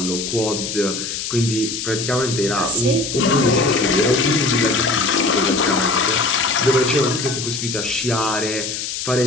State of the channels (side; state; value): left; noise; hiss, 5 dB below the sound